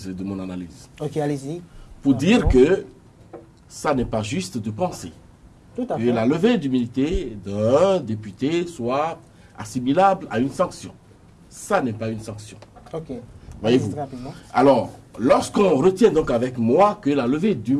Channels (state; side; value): identical; both; correlation 1.00